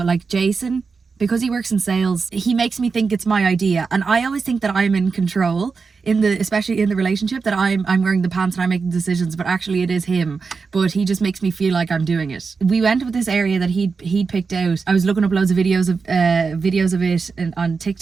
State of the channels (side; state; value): left; quieter; 4.9 dB